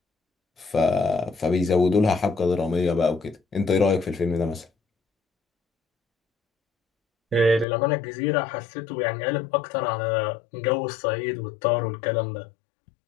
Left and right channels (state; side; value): drops out; right; at 7.7 s